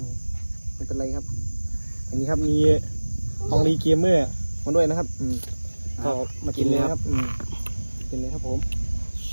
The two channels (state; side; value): inverted; both; correlation -1.00